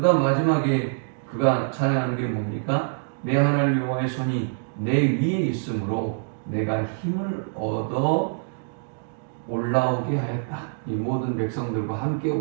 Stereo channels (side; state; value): left; silent; digital silence